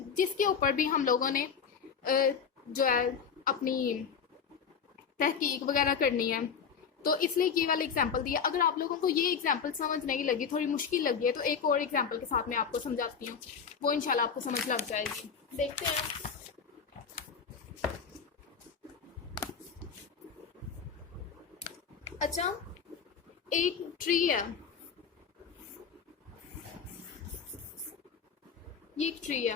जिसके ऊपर भी हम लोगों ने जो है अपनी तहकीक वगैरह करनी है, तो इसलिए ये वाला एग्जाम्पल दिया। अगर आप लोगों को ये एग्जाम्पल समझ नहीं लगी, थोड़ी मुश्किल लगी है, तो एक और एग्जाम्पल के साथ मैं आपको समझाती हूँ, वो इंशाल्लाह आपको समझ लग जाएगी। देखते हैं। अच्छा, एक ट्री है, ये एक ट्री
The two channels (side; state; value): right; quieter; 6.5 dB